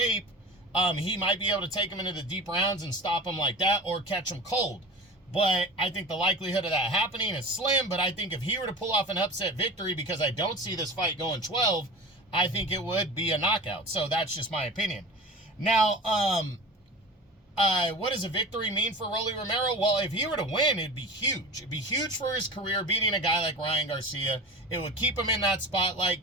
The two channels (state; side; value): normal; both; correlation 0.34